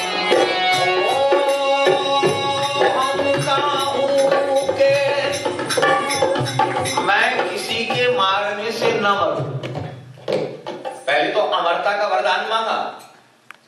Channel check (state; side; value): identical; both; correlation 1.00